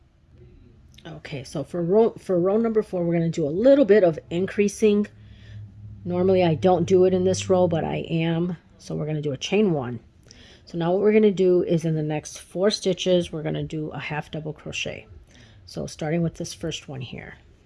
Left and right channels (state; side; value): identical; both; correlation 1.00